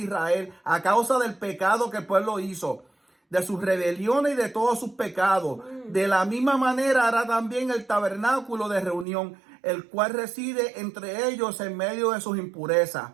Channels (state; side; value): drops out; left; at 9.1 s